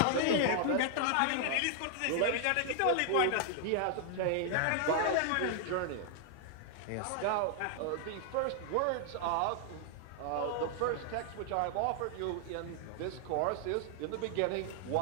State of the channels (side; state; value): both; different; correlation 0.00